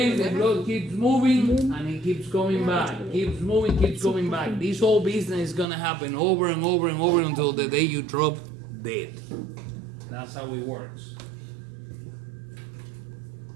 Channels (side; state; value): left; drops out; at 5.7 s